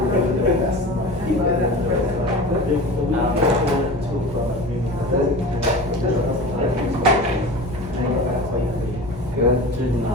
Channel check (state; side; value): normal; both; correlation 0.33